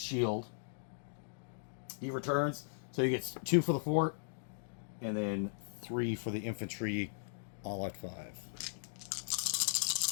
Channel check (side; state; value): right; silent; digital silence